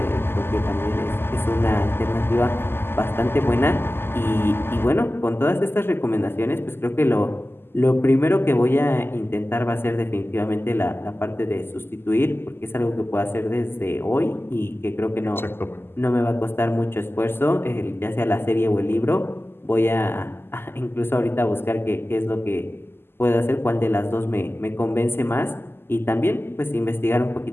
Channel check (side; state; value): right; late; 0.11 ms